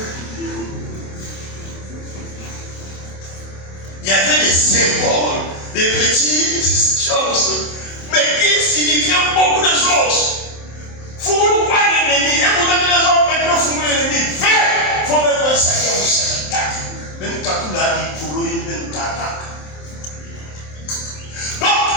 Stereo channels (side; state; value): right; late; 27 ms